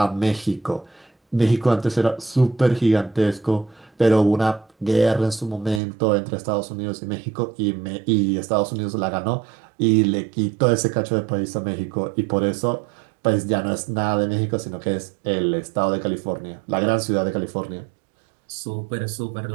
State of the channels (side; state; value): left; drops out; at 5.8 s